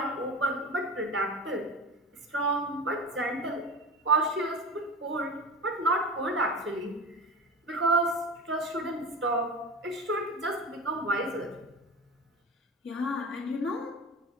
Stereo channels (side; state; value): both; normal; correlation 0.30